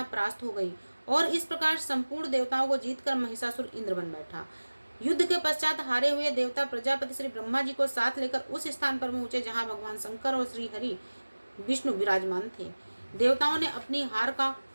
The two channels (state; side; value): inverted; both; correlation -1.00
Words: परास्त हो गई और इस प्रकार संपूर्ण देवताओं को जीतकर महिषासुर इंद्र बन बैठा। युद्ध के पश्चात हारे हुए देवता प्रजापति श्री ब्रह्मा जी को साथ लेकर उस स्थान पर पहुंचे जहां भगवान शंकर और श्री हरि विष्णु विराजमान थे। देवताओं ने अपनी हार का